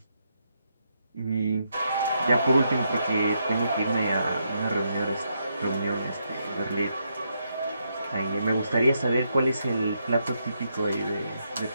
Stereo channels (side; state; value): both; inverted; correlation -0.79